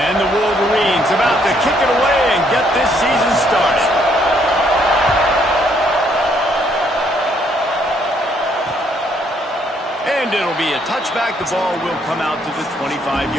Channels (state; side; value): normal; both; correlation 0.69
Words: the Wolverines about to kick it away and get this season started. And it'll be a touchback. The ball will come out to the